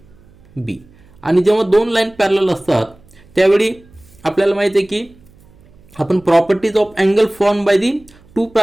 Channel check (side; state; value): right; noise; hum, 28 dB below the sound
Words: B. आणि जेव्हा दोन लाईन पॅरलल असतात त्यावेळी आपल्याला माहिती आहे की आपण properties of angle form by the two